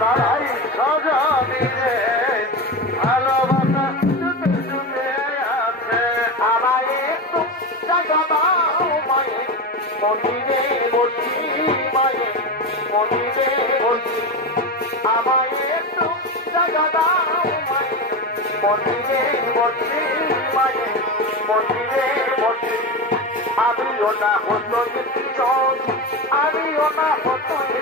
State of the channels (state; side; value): normal; both; correlation 0.20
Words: ভাই সজনী রে ভালোবাসা ডুবে ডুবে আছে আমায় একটু জায়গা দাও মায়ে মন্দিরে বসি মায়ে মন্দিরে বসি আমায় একটু জায়গা দাও মায়ে মন্দিরে বসি মায়ে মন্দিরে বসি আমিও না হতো জন আমিও না হতো